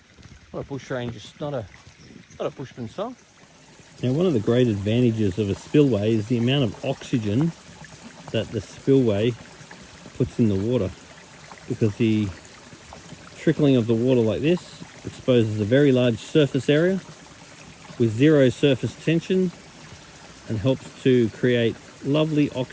bushranger, not a bushman song. Now, one of the great advantages of a spillway is the amount of oxygen that the spillway puts in the water, because the trickling of the water like this exposes a very large surface area with zero surface tension and helps to create lovely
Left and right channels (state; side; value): identical; both; correlation 1.00